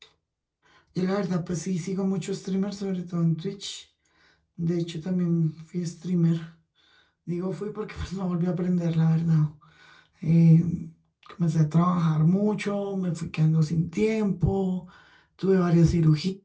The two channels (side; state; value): both; identical; correlation 1.00